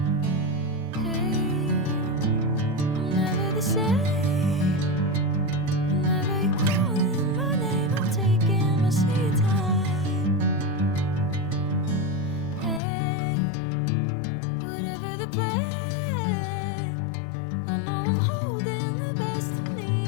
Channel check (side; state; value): right; drops out; at 12.8 s